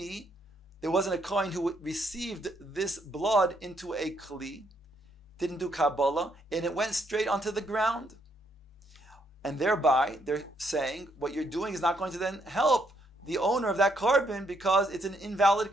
there wasn't a Kohen who received this blood into a Kli, didn't do Kabbalah, and it went straight onto the ground. And thereby, they're saying, what you're doing is not going to then help the owner of that carbon because it's an invalid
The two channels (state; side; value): normal; both; correlation 0.74